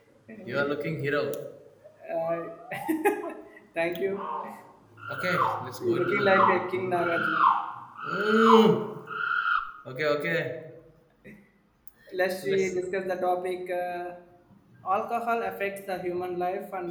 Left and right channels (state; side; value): identical; both; correlation 1.00